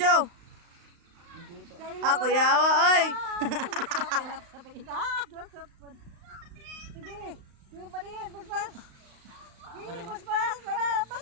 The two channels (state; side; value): late; left; 35 ms